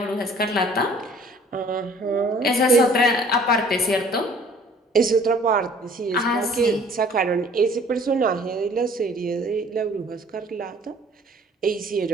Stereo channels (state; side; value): normal; both; correlation 0.53